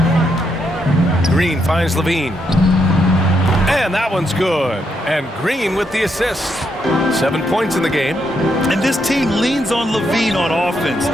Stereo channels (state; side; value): normal; both; correlation 0.78